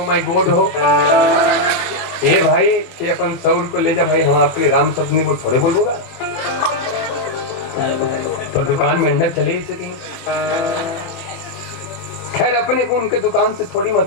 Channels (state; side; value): late; right; 24 ms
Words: माय गॉड हो ए भाई कि अपन 100 रुपए ले जा भाई हम आपके लिए राम शब्द नहीं वो थोड़े बोलूंगा तो दुकान में अंडा चले ही सके। खैर अपने को उनके दुकान से थोड़ी